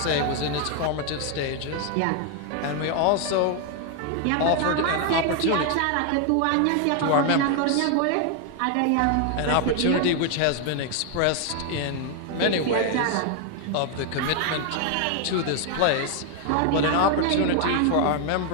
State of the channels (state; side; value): different; both; correlation 0.00